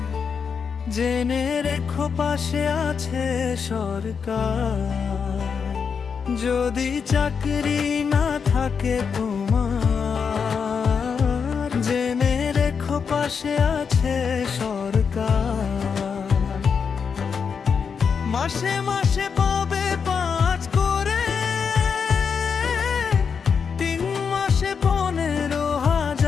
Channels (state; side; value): quieter; right; 6.2 dB